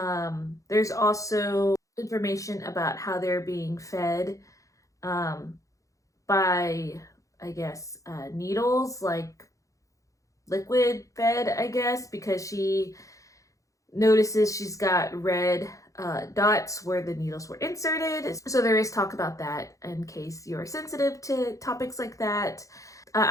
there's also information about how they're being fed by, I guess, needles, like liquid fed, I guess, because she notices she's got red dots where the needles were inserted. So there is talk about that in case you're sensitive to topics like that.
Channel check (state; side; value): late; right; 0.16 ms